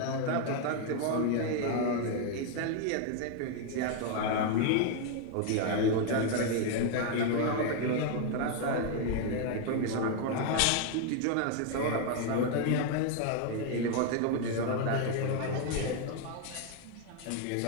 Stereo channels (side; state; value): both; different; correlation 0.01